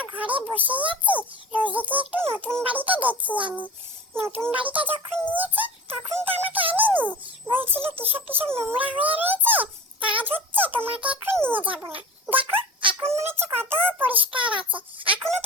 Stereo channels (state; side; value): normal; both; correlation 0.36